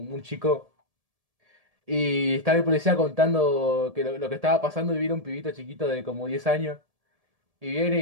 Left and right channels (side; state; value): left; late; 1.7 ms